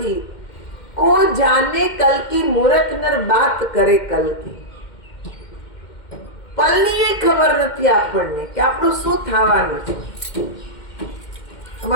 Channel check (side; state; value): right; late; 2.1 ms